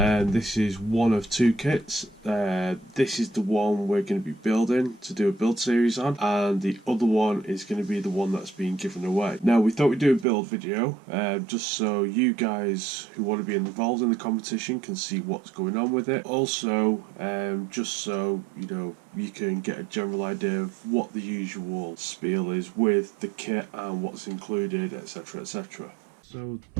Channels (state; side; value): drops out; left; at 10.2 s